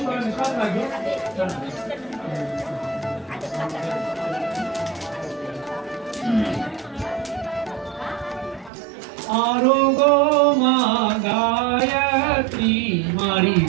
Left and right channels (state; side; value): drops out; left; at 8.7 s